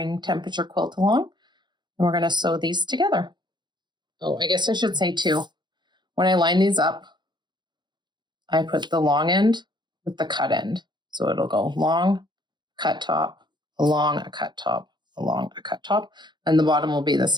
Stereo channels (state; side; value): late; left; 0.21 ms